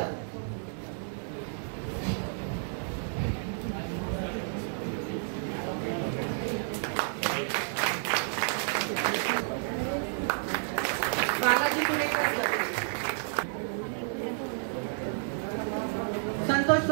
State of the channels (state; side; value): silent; left; digital silence